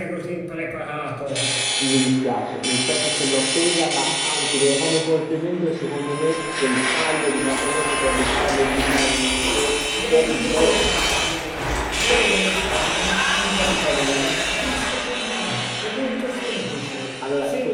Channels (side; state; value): both; identical; correlation 1.00